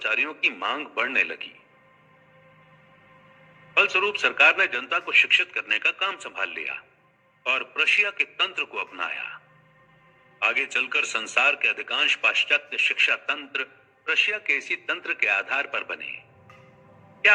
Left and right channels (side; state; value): both; identical; correlation 1.00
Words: की मांग बढ़ने लगी फलस्वरूप सरकार ने जनता को शिक्षित करने का काम संभाल लिया और प्रशिया के तंत्र को अपनाया। आगे चलकर संसार के अधिकांश पाश्चात्य शिक्षा तंत्र प्रशिया के इसी तंत्र के आधार पर बने।